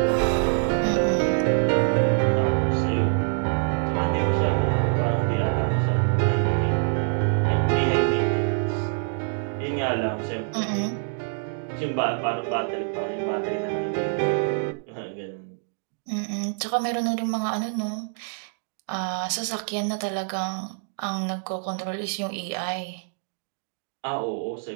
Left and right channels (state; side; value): silent; left; digital silence